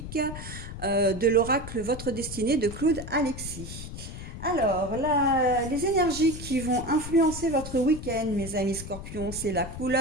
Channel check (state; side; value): noise; left; rumble, 10 dB below the sound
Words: de l'oracle Votre Destinée de Claude Alexis. Alors, les énergies qui vont influencer votre week-end, mes amis scorpions, c'est la